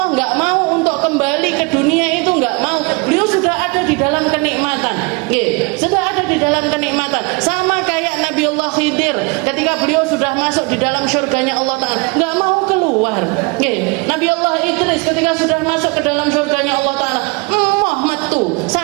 nggak mau untuk kembali ke dunia itu, nggak mau. Beliau sudah ada di dalam kenikmatan, sudah ada di dalam kenikmatan. Sama kayak Nabi Allah Khidir, ketika beliau sudah masuk di dalam surganya Allah Ta'ala, nggak mau keluar. Nabi Allah Idris ketika sudah masuk ke dalam surganya Allah Ta'ala, metu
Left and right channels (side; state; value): left; quieter; 28.8 dB